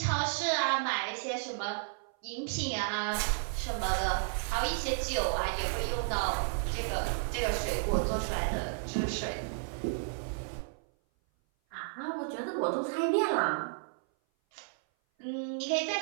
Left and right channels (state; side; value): silent; left; 56 dB below the other